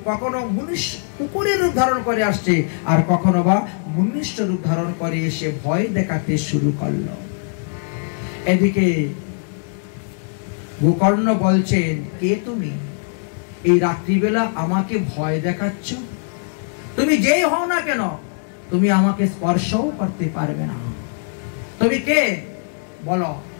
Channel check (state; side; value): silent; right; digital silence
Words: কখনো কুকুরের রূপ ধারণ করে আসছে, আর কখনো বা মনুষ্য রূপ ধারণ করে এসে ভয় দেখাতে শুরু করলো। এদিকে গোকর্ণ বলছেন, কে তুমি? এই রাত্রিবেলা আমাকে ভয় দেখাচ্ছ? তুমি যেই হও না কেন, তুমি আমাকে স্পর্শও করতে পারবে না। তুমি কে বলো?